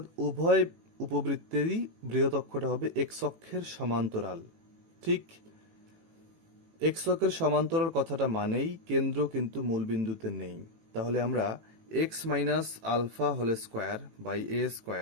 উভয় উপবৃত্তেরই বৃহৎ অক্ষটা হবে এক্স অক্ষের সমান্তরাল। ঠিক এক্স অক্ষের সমান্তরাল কথাটা মানেই কেন্দ্র কিন্তু মূল বিন্দুতে নেই। তাহলে আমরা x minus alpha whole square by a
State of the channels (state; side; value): late; left; 18 ms